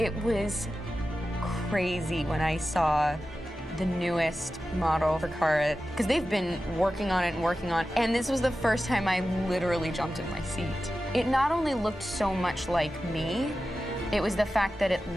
was crazy when I saw the newest model for Kara, because they've been working on it and working on it, and this was the first time I literally jumped in my seat. It not only looked so much like me, it was the fact that it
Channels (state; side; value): normal; both; correlation 0.93